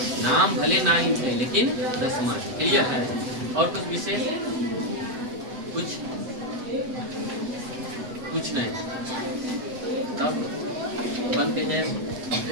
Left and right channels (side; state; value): left; late; 8.0 ms